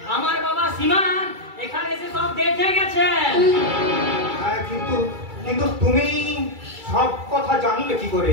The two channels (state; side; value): late; left; 2.3 ms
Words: আমার বাবা সীমান এখানে এসে সব দেখে গেছেন। কিন্তু তুমি সব কথা জানলে কি করে?